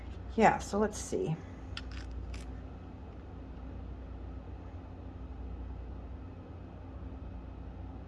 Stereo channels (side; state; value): both; identical; correlation 1.00